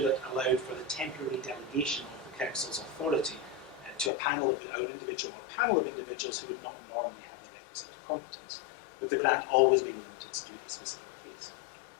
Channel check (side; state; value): right; drops out; at 4.1 s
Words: that allowed for the temporary delegation of the Council's authority to a panel of an individual or a panel of individuals who would not normally have the requisite competence, with the grant always being limited to a specific case.